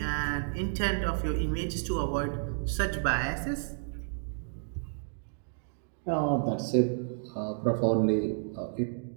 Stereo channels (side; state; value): left; silent; digital silence